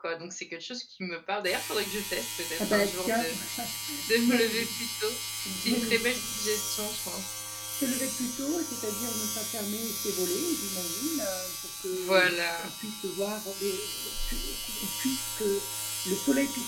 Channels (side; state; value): both; identical; correlation 1.00